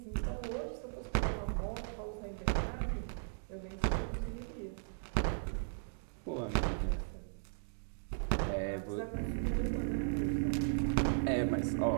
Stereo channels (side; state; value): left; silent; digital silence